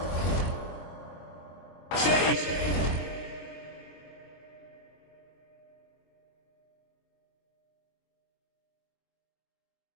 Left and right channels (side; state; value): right; late; 23 ms